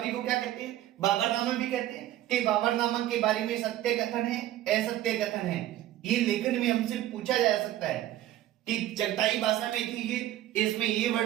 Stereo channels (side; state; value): left; quieter; 13.7 dB